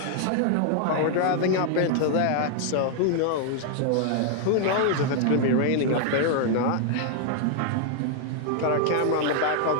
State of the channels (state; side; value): different; both; correlation 0.00